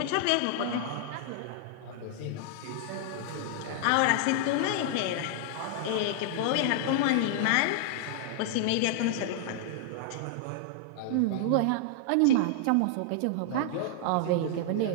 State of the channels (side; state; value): both; different; correlation -0.01